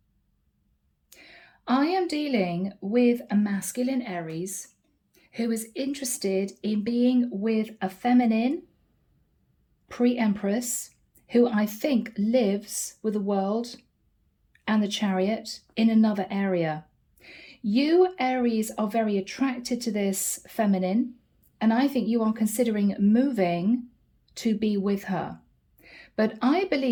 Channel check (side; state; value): both; identical; correlation 1.00